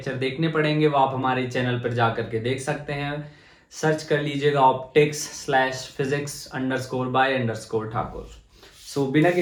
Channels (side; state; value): both; identical; correlation 1.00